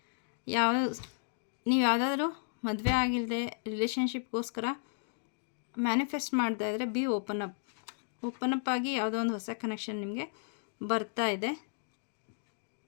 ನೀವು ಯಾವುದಾದ್ರೂ ಮದುವೆ ಆಗಿಲ್ಲದೆ ರಿಲೇಷನ್ಶಿಪ್ಗೋಸ್ಕರ ಮ್ಯಾನಿಫೆಸ್ಟ್ ಮಾಡ್ತಾ ಇದ್ದರೆ ಬಿ ಓಪನ್ ಅಪ್ ಆಗಿ ಯಾವುದೋ ಒಂದು ಹೊಸ ಕನೆಕ್ಷನ್ ನಿಮಗೆ ಬರ್ತಾ ಇದೆ.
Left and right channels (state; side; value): silent; right; digital silence